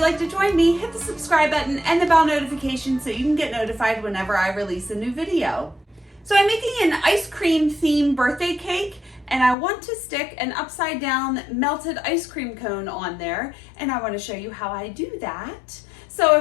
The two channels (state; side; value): drops out; right; at 9.6 s